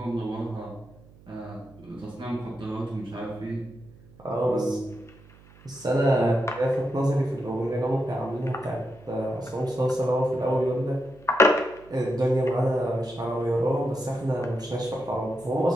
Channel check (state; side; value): noise; right; hum, 24 dB below the sound